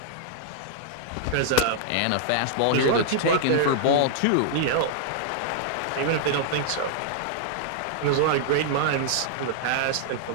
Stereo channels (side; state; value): both; different; correlation -0.01